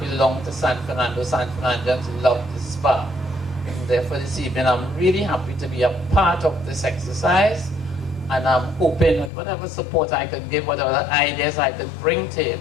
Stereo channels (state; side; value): drops out; right; at 9.3 s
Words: to San Fernando. San Fernandans love this park. And therefore this evening I'm really happy to be a part of this exercise, and I'm hoping that whatever support I can give, whatever ideas I can bring to it,